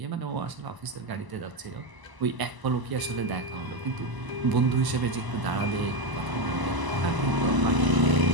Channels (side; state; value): left; late; 1.0 ms